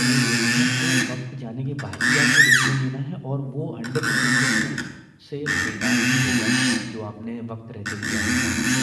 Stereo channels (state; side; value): identical; both; correlation 1.00